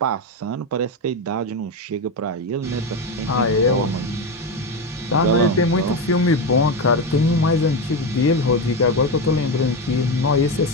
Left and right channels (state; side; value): normal; both; correlation 0.14